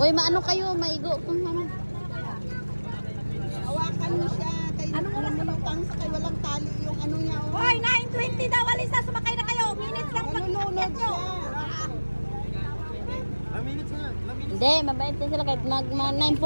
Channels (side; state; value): both; inverted; correlation -1.00